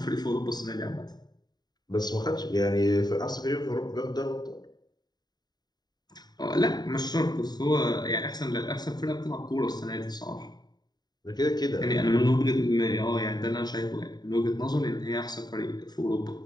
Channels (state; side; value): late; right; 0.20 ms